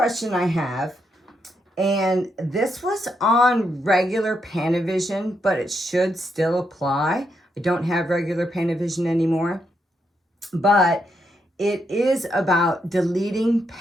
I have, and this was on regular Pantovision, but it should still apply. I don't have regular Pantovision anymore, but it is about deleting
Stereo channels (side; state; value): both; normal; correlation 0.80